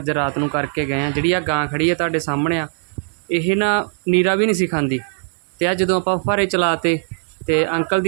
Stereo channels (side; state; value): left; silent; 66 dB below the other